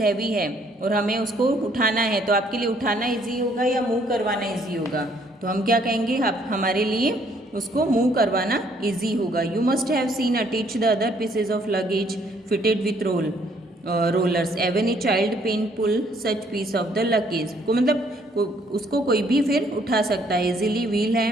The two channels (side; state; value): both; normal; correlation 0.65